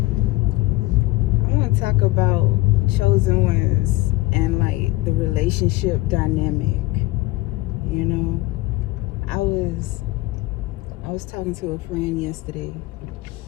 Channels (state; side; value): quieter; right; 19.4 dB